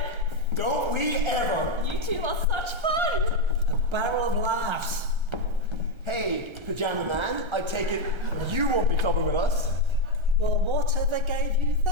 Don't we ever? You two are such fun. A barrel of laughs. Hey, Pajama Man, I take it you won't be clubbing with us? Well, whatever gave you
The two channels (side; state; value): left; late; 1.3 ms